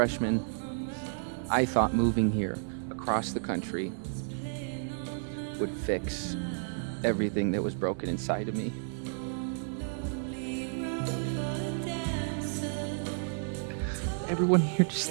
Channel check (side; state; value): left; silent; 57 dB below the other